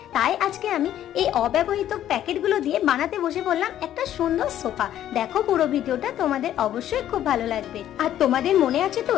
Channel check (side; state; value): right; quieter; 11.6 dB